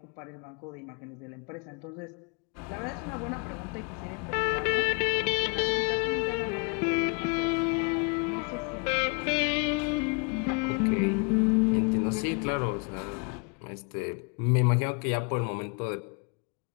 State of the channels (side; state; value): right; quieter; 34.2 dB